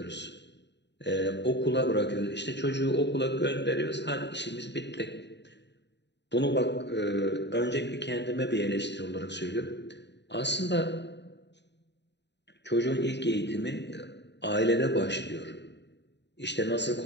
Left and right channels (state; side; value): late; right; 0.50 ms